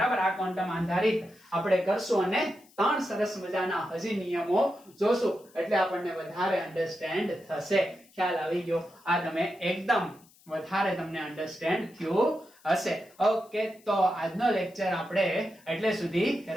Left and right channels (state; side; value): noise; left; hiss, 28 dB below the sound